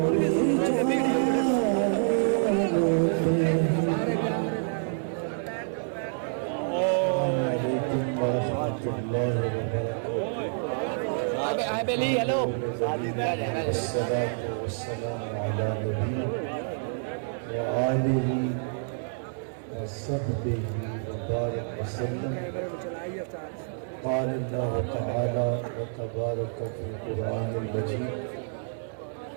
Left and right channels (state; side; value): silent; left; 59 dB below the other